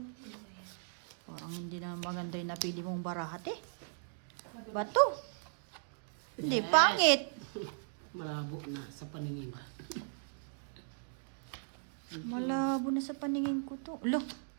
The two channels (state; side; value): silent; left; digital silence